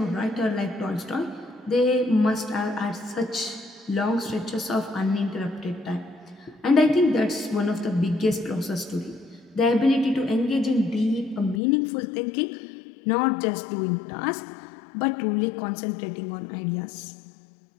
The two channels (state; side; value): drops out; right; at 11.6 s